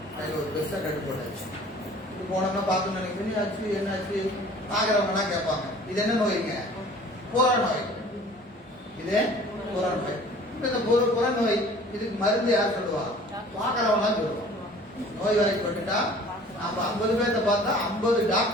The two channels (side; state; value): both; normal; correlation 0.48